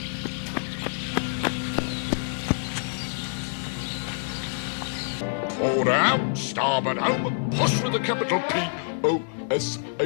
Forward out, starboard home, push with a capital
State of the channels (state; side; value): silent; right; 59 dB below the other